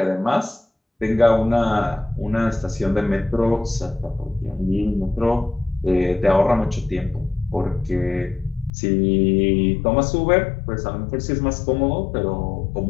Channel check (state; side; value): drops out; right; at 8.7 s